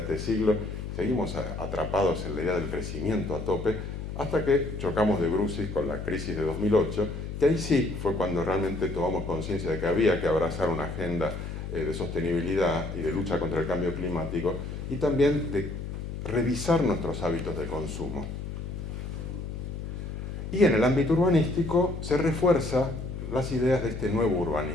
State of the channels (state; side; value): noise; left; hum, 7 dB below the sound